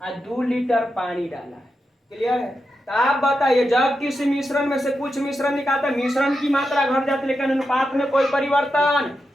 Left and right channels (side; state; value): both; normal; correlation 0.88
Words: और 2 लीटर पानी डाला है। क्लियर है। तो आप बताइए जब किसी मिश्रण में से कुछ मिश्रण निकालते हैं, मिश्रण की मात्रा घट जाती है लेकिन अनुपात में कोई परिवर्तन